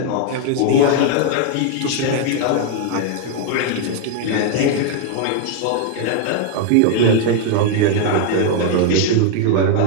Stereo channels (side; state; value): both; different; correlation 0.00